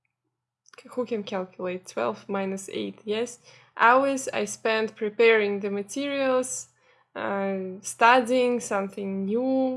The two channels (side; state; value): both; identical; correlation 1.00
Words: who can calculate 12 minus 8, yes, hours I spent preparing the materials, studying something